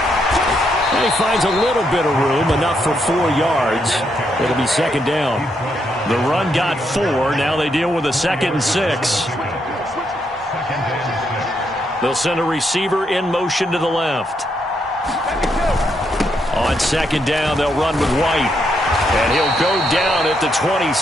And he finds a little bit of room, enough for 4 yards. It'll be second down. The run got 4. Now they deal with a 2nd and 6. They'll send a receiver in motion to the left. On second down, they'll run with White. And he'll go down at the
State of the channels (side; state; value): both; normal; correlation 0.78